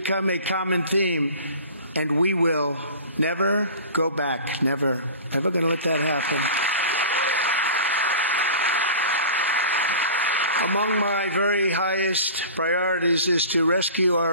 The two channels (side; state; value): both; inverted; correlation -0.38